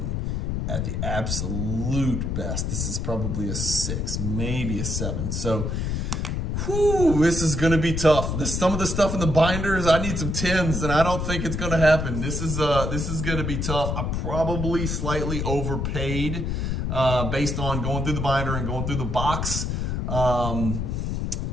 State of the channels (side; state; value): left; noise; rumble, 1 dB below the sound